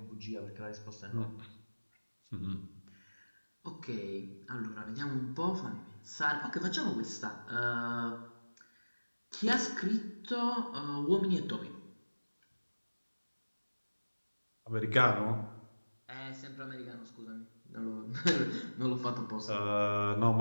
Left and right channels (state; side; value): inverted; both; correlation -1.00